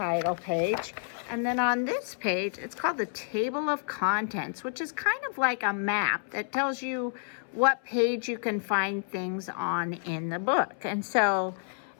page. And then on this page, it's called the Table of Contents, which is kind of like a map that tells you what page you can find things on in the book. And so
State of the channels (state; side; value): silent; right; 58 dB below the other